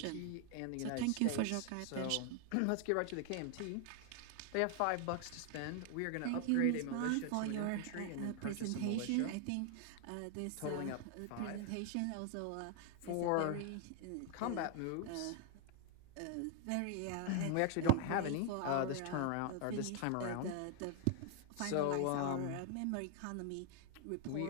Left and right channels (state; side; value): different; both; correlation 0.00